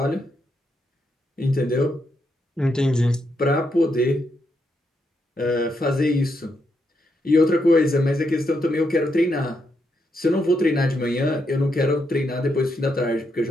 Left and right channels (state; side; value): normal; both; correlation 0.80